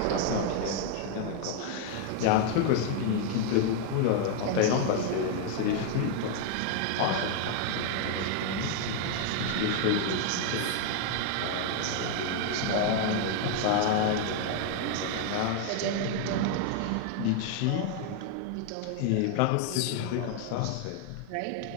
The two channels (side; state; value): both; different; correlation 0.00